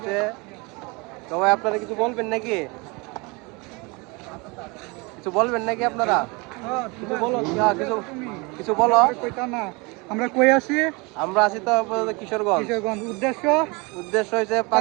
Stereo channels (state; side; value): quieter; left; 27.4 dB